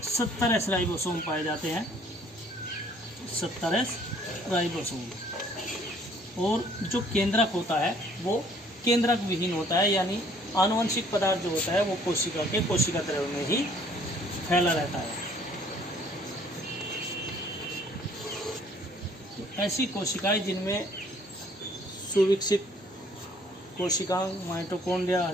70 एस राइबोसोम पाए जाते हैं, 70 एस राइबोसोम। और जो केंद्रक होता है वो केंद्रक विहीन होता है, यानी आनुवंशिक पदार्थ जो होता है वो कोशिका द्रव्य में ही फैला रहता है। तो ऐसी कोशिकाएं जिनमें सुविकसित कोशिकांग, माइटोकॉन्ड्रिया,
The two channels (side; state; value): both; normal; correlation 0.59